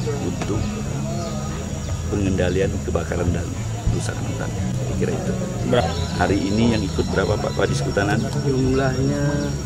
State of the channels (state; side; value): identical; both; correlation 1.00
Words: untuk pengendalian kebakaran dan kerusakan hutan. Kira itu. Hari ini yang ikut berapa Pak Kadis Kehutanan? Jumlahnya